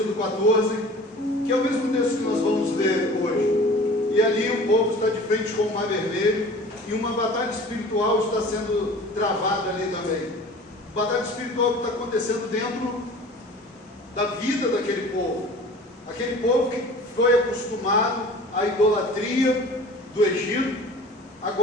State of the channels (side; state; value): both; normal; correlation 0.43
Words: 14, que é o mesmo texto que nós vamos ler hoje. E ali o povo está de frente com o Mar Vermelho e uma batalha espiritual está sendo travada ali também. Batalha espiritual que está acontecendo dentro da vida daquele povo. Aquele povo que foi acostumado à idolatria do Egito,